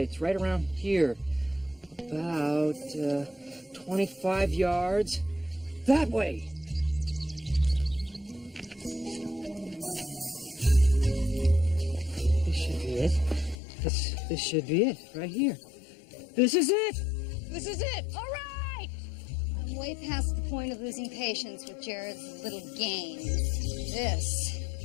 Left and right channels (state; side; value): drops out; right; at 13.6 s